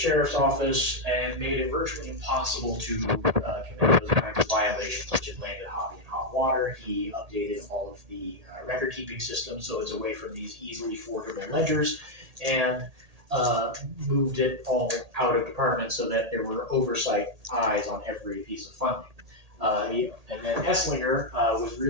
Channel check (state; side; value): late; left; 1.8 ms